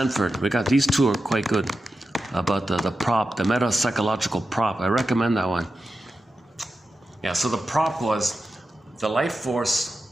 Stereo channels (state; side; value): normal; both; correlation 0.91